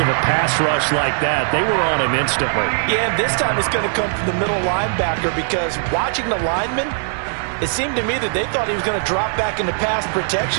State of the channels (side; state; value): left; silent; 66 dB below the other